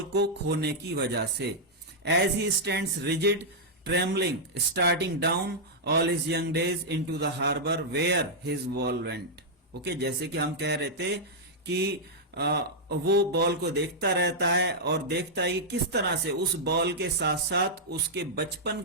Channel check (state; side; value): normal; both; correlation -0.06